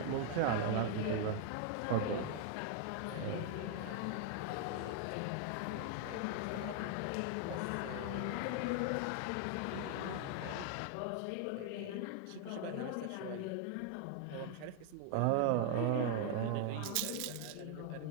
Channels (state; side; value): different; both; correlation 0.00